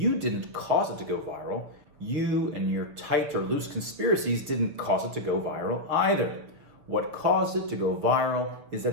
didn't cause it to go viral. You and your tight or loose conspiracies didn't cause it to go viral either. What caused it to go viral is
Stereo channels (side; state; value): left; late; 6.8 ms